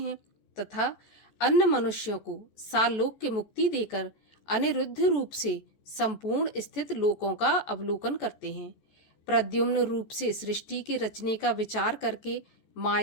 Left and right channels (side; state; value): right; late; 14 ms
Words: तथा अन्य मनुष्यों को सालोक्य मुक्ति देकर अनिरुद्ध रूप से संपूर्ण स्थित लोकों का अवलोकन करते हैं। प्रद्युम्न रूप से सृष्टि के रचने का विचार करके